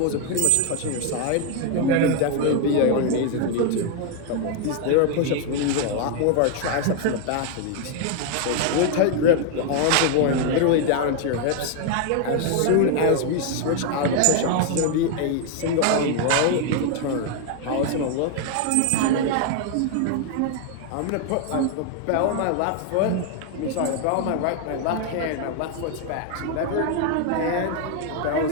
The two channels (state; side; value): different; both; correlation 0.01